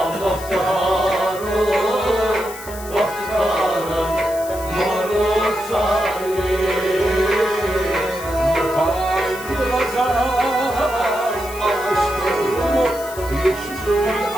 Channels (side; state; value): left; noise; hiss, 15 dB below the sound